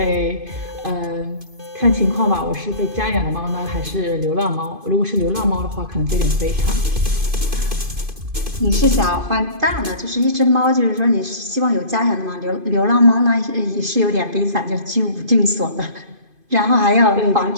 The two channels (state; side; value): late; left; 2.5 ms